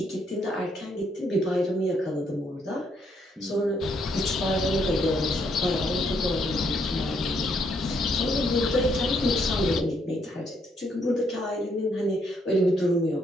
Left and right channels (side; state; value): both; normal; correlation 0.73